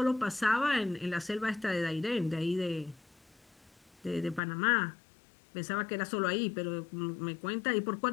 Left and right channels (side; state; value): right; drops out; at 4.4 s